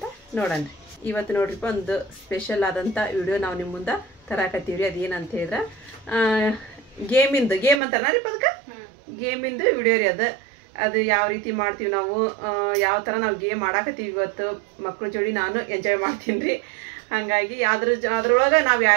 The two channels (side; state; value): left; drops out; at 7.8 s